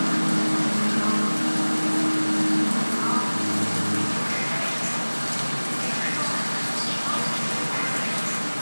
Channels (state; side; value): inverted; both; correlation -1.00